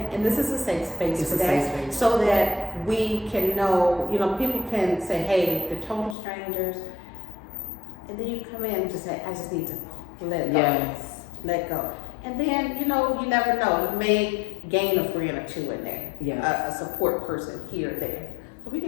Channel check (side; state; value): right; drops out; at 6.2 s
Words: and this is a safe space for that, so that we can know, you know, people can say, hey, they're total strangers, and then you come in and just say, I just need to let it go. Yes. Let go. And then, you know, you never know, you may gain a friend or two in there. Yes. A support person here or there. So we